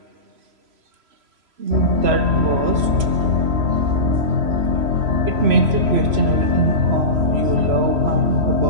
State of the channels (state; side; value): late; left; 3.0 ms